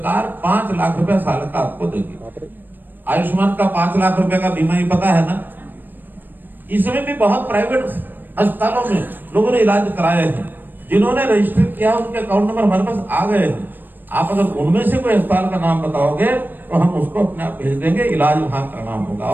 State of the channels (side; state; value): left; late; 0.092 ms